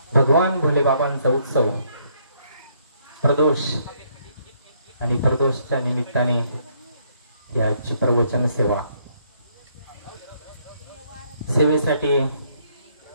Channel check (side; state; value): both; inverted; correlation -0.69